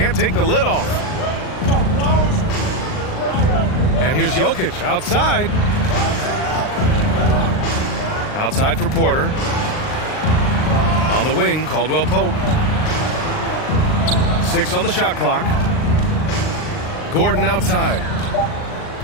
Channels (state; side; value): late; right; 39 ms